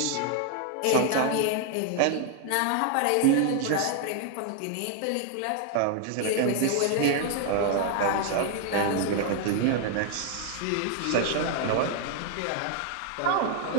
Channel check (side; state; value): both; different; correlation 0.00